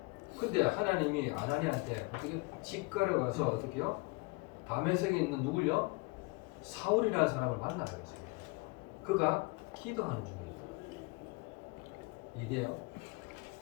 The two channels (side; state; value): right; quieter; 26.9 dB